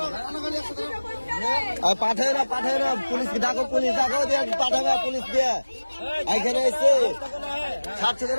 পাঠাবে না পুলিশ ডাকো দিয়ে পাঠাবে পুলিশ দিয়ে এইখানে এসে ছাড়ছো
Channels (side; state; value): both; inverted; correlation -1.00